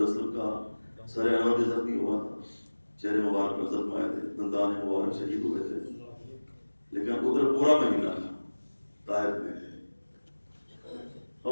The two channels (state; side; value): inverted; both; correlation -1.00